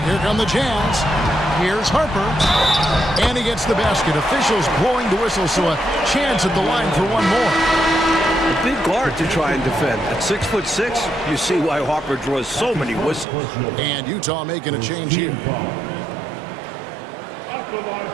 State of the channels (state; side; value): drops out; left; at 13.2 s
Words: Here come the Jazz. Here's Harper. And he gets the basket. Officials blowing the whistle, so a chance at the line for one more. A big guard to try and defend. At 6'6", you see why Harper draws so many whistles. And Utah making a change here.